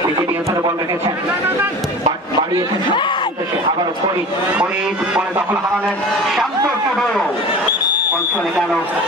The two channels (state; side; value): normal; both; correlation 0.37